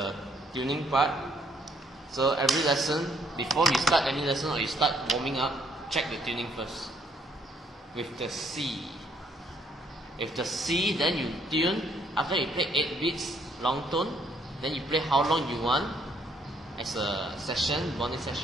tuning part. So every lesson, before you start any lesson or you start warming up, check the tuning first. With the C. With the C, then you tune. After you play 8 beats, long tone, then you play how long you want as a session, bonding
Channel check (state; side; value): normal; both; correlation 0.68